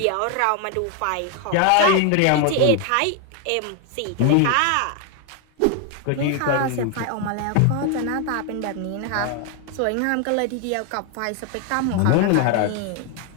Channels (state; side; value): different; both; correlation 0.01